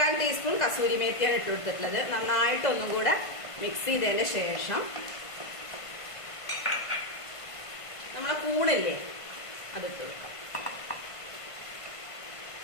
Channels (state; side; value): late; right; 1.5 ms